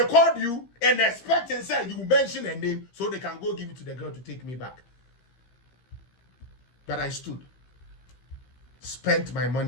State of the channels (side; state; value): right; late; 15 ms